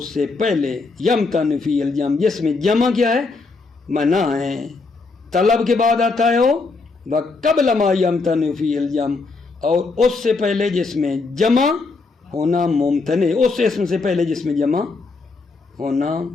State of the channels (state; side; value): quieter; right; 4.0 dB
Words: سے پہلے یمتنع فیہ الجمع جس میں جمع کیا ہے؟ منع ہے. طلب کے بعد آتا ہے وہ وقبل ما یمتنع فیہ الجمع، اور اس سے پہلے جس میں جمع ہونا ممتنع. اس اسم سے پہلے جس میں جمع ہونا